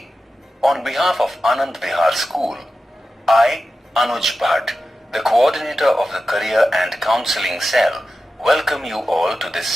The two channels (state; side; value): normal; both; correlation 0.92